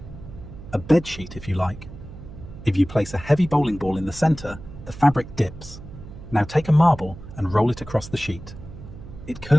A bedsheet, if you like. If you place a heavy bowling ball in the center, the fabric dips. Now take a marble and roll it across the sheet. It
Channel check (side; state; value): right; noise; hum, 14 dB below the sound